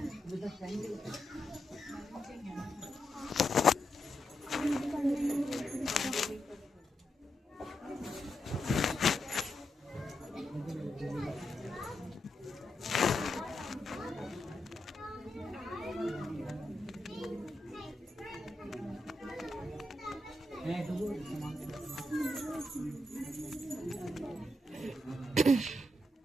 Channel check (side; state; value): both; normal; correlation 0.84